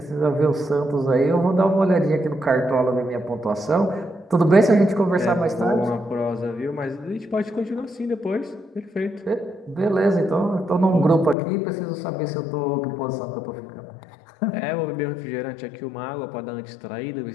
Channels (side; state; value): right; drops out; at 11.4 s